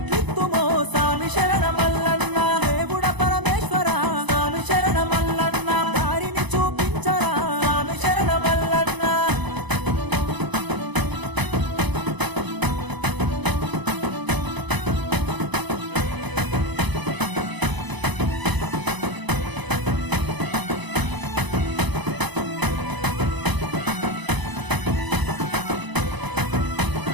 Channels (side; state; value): left; late; 1.0 ms